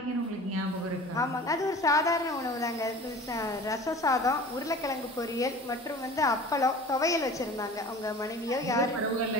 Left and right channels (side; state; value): both; normal; correlation 0.41